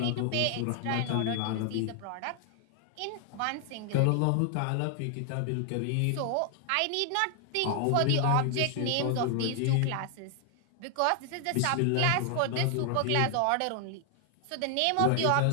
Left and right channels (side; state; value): both; different; correlation 0.00